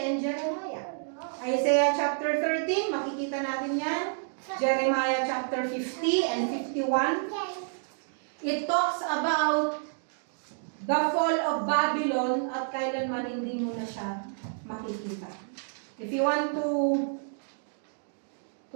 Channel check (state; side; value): silent; left; digital silence